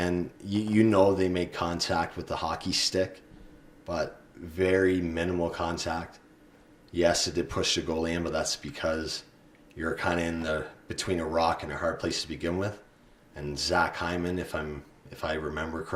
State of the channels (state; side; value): identical; both; correlation 1.00